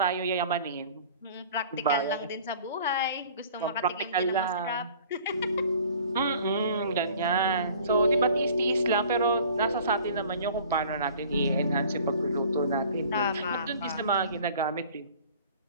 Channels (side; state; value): both; inverted; correlation -0.48